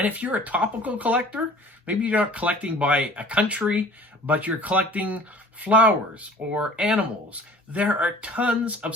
if you're a topical collector, maybe you're not collecting by a country, but you're collecting flowers or animals. There are tons of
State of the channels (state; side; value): normal; both; correlation 0.47